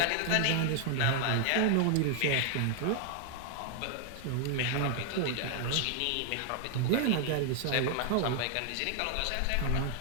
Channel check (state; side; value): different; both; correlation 0.00